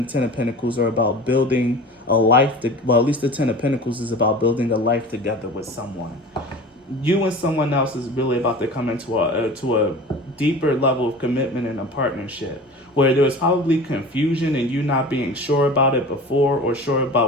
the Ten of Pentacles are about building a life. At least the Ten of Pentacles is about building a life together with someone. You and someone else is really about to come into a deeper level of commitment and a partnership, where there was probably confusion and you not being sure about it before, or sure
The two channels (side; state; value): both; normal; correlation 0.37